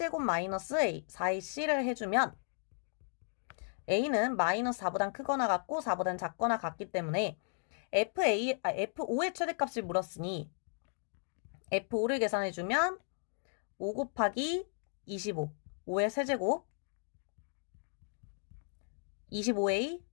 마이너스 4ac를 해주면 a는 마이너스 4보다 크거나 같고 4보다 작거나 같기 때문에 f5의 최대값을 물었으니 f5를 계산해주면 5 곱하기 25, 5의 세제곱 25a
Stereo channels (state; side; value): silent; right; digital silence